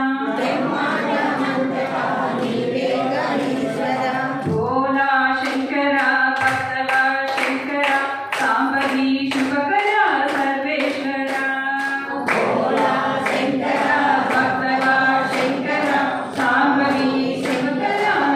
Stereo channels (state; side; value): identical; both; correlation 1.00